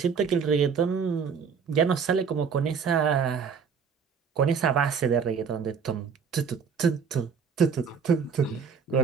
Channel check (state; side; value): quieter; left; 6.3 dB